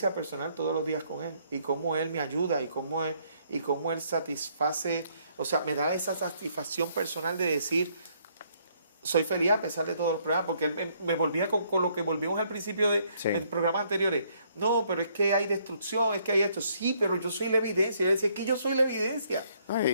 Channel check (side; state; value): both; inverted; correlation -0.68